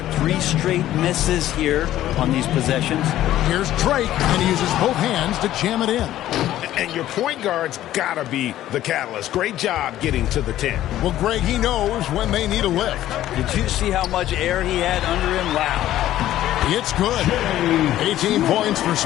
3 straight misses here on these possessions. Here's Drake, and he uses both hands to jam it in. And your point guard's got to be the catalyst. Great job getting to the 10. Well, Greg, he knows when they need a lift. Did you see how much air he had under him? Wow. It's good. 18 points for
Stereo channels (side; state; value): right; quieter; 13.4 dB